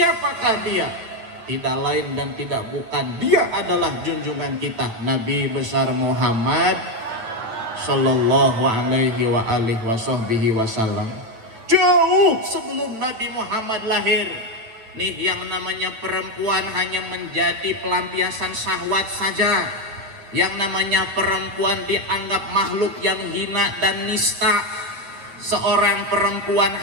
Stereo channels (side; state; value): left; late; 8.9 ms